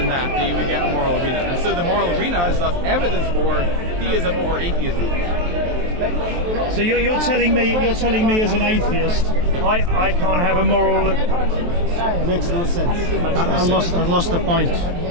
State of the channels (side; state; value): left; late; 23 ms